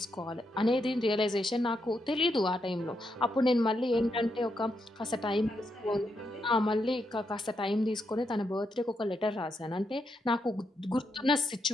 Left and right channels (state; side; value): normal; both; correlation 0.81